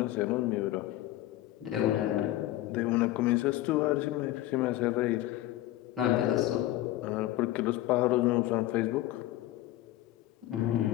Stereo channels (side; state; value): right; quieter; 15.3 dB